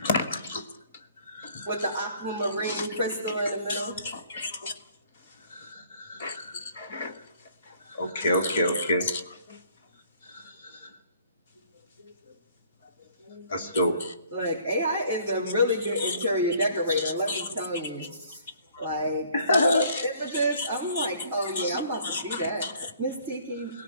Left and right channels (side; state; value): both; inverted; correlation -0.58